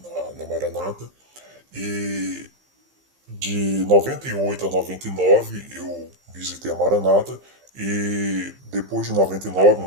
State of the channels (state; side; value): late; left; 15 ms